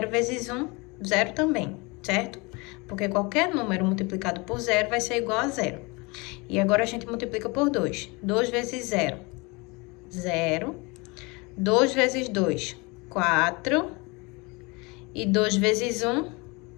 vezes 1, 0 também, certo? Porque qualquer número multiplicado por 0 vai ser igual a 0. E agora, a gente multiplica por 2. 2 vezes 0, 0. 2 vezes 2, 4. E 2 vezes 1,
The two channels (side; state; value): right; quieter; 27.0 dB